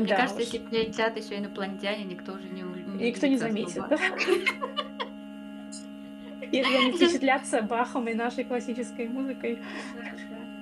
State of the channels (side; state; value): both; identical; correlation 1.00